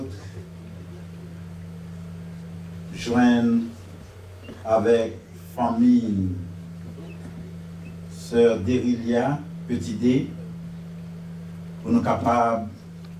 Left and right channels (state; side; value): identical; both; correlation 1.00